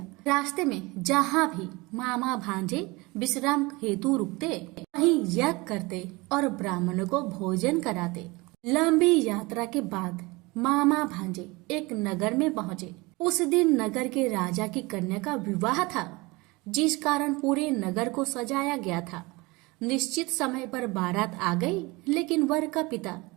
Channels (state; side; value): quieter; left; 23.9 dB